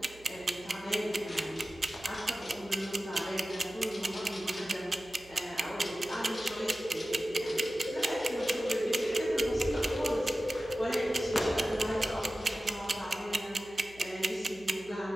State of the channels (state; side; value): noise; right; hum, 23 dB below the sound